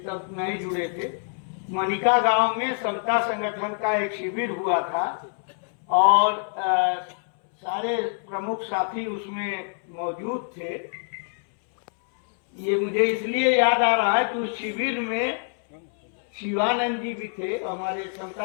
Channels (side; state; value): right; silent; 61 dB below the other